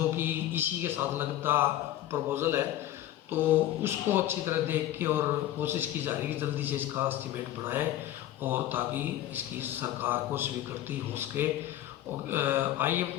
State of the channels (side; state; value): right; quieter; 13.1 dB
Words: कि इसी के साथ लगता प्रपोजल है, तो उसको अच्छी तरह देख के और कोशिश की जा रही है कि जल्दी से इसका एस्टीमेट बनाएं और ताकि इसकी सरकार को स्वीकृति हो सके। और